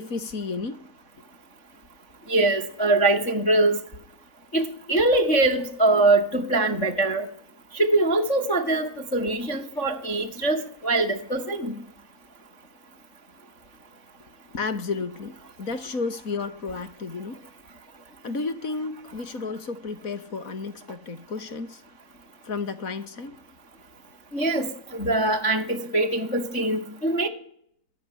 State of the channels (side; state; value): right; late; 3.6 ms